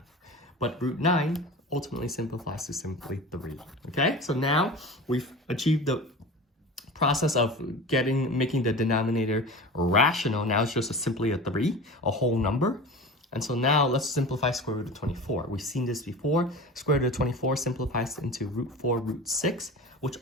But root 9 ultimately simplifies to simply 3. Okay, so now we've achieved the process of making the denominator rational. Now it's just simply a 3, a whole number. And so now let's simplify square root of 24. We've seen this before. Square root of 24 simplifies into root 4 root 6, which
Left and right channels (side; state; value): both; normal; correlation 0.34